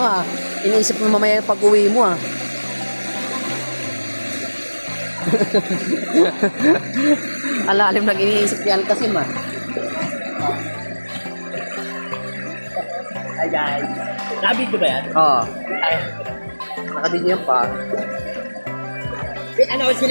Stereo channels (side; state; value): both; inverted; correlation -1.00